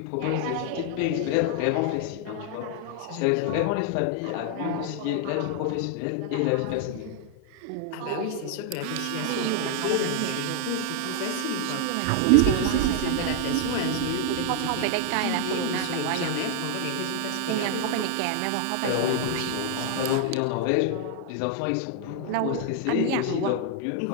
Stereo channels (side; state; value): both; different; correlation 0.00